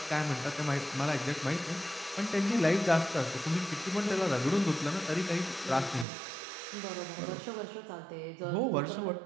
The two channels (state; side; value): drops out; left; at 6.1 s